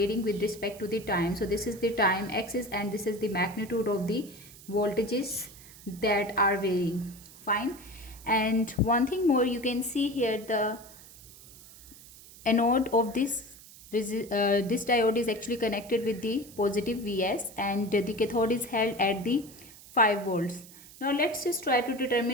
with respect to the time. So this is the time axis and this is the magnitude of the voltages that are varying. Fine. And one thing more, you can see here the anode of this diode is actually connected with the positive Vs, and the cathode is held at the 5 volts. Now let's just try to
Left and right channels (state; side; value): noise; right; hiss, 19 dB below the sound